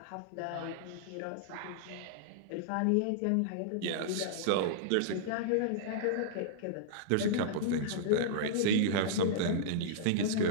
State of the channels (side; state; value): both; different; correlation -0.02